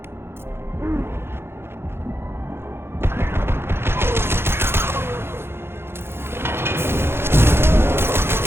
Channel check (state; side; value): late; left; 0.11 ms